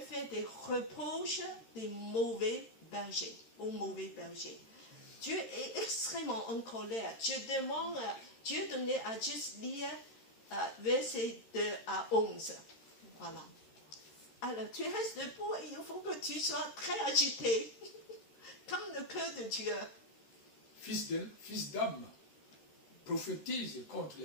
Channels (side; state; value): right; late; 13 ms